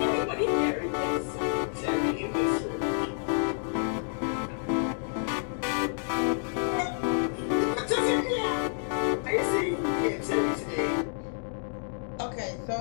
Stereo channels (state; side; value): silent; right; digital silence